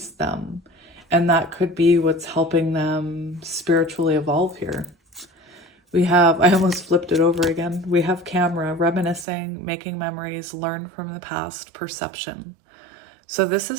them. And that could be what's helping them spiritually evolve here. We have, I almost flipped it over again. We have camera, reminiscing, making memories, learn from the past, perception. So this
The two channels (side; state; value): left; drops out; at 9.2 s